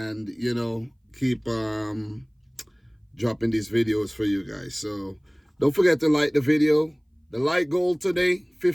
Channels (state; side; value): identical; both; correlation 1.00